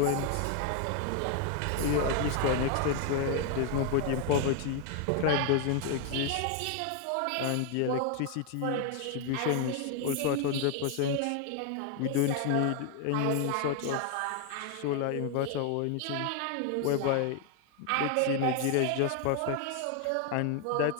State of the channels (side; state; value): both; different; correlation 0.01